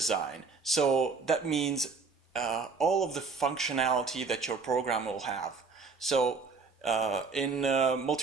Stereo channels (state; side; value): quieter; left; 4.7 dB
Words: So that means all of the functionality that your program will have. So in